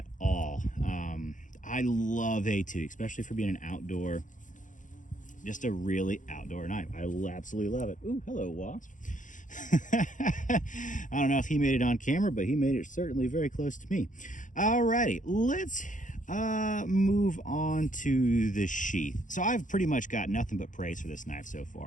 all. I love A2, especially for being an outdoor, just a really outdoor knife. I absolutely love it. Ooh, hello, wasp. I don't know if he made it on camera, but he made it certainly very close to me. Alrighty, let's move on to the sheath. So I've pretty much got nothing but praise for this knife so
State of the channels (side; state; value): right; late; 0.37 ms